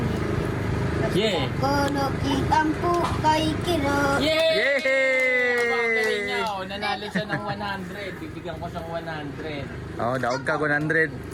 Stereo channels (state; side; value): identical; both; correlation 1.00